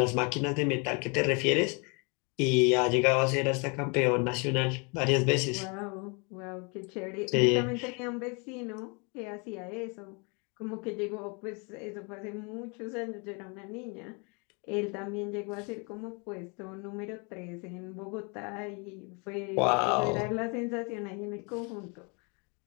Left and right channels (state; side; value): quieter; right; 32.8 dB